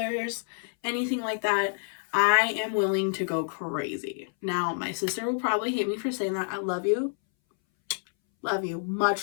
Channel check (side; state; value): right; silent; 59 dB below the other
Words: anything like that. I am willing to go crazy. Now, my sister will probably hate me for saying that. I love you. Love you.